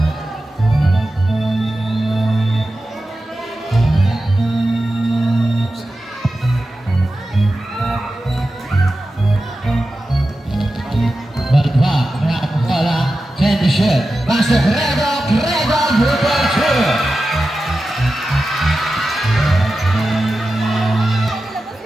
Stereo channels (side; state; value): both; normal; correlation 0.92